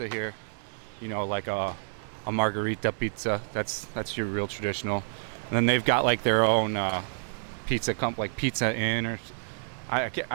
here, you know, like a margherita pizza. That's your real traditional. And then they've got like their own pizza like Pizza Inn, or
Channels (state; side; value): silent; left; 57 dB below the other